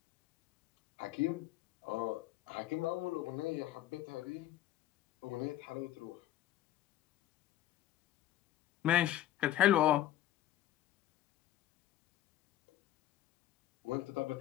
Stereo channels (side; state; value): right; quieter; 13.6 dB